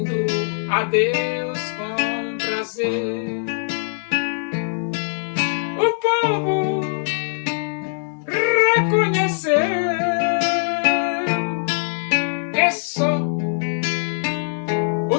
a Deus com prazer. O povo reconheceu que só o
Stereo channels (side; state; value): right; silent; 61 dB below the other